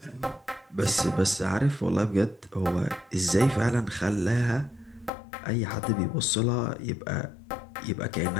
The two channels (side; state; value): right; drops out; at 5.1 s